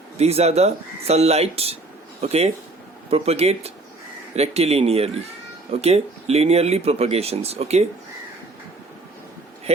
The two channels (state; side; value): quieter; left; 3.1 dB